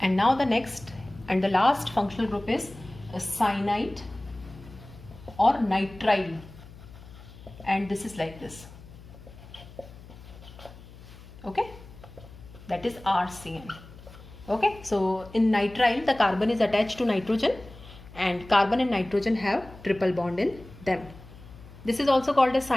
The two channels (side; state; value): left; noise; hum, 18 dB below the sound